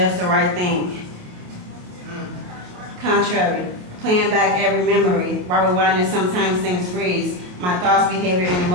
the right thing. Contrary, playing back every memory, while rewinding sometimes things freeze. My thoughts, behavior, and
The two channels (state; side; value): late; left; 28 ms